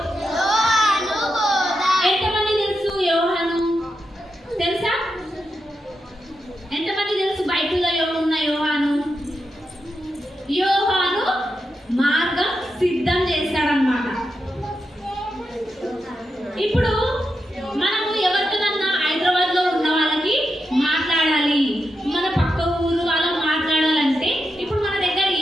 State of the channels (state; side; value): normal; both; correlation 0.87